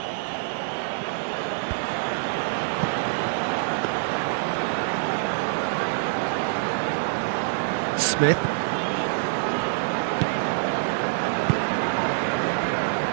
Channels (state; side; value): silent; left; 61 dB below the other